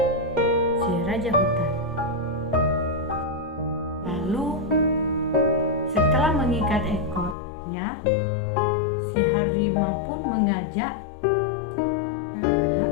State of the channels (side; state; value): right; drops out; at 7.4 s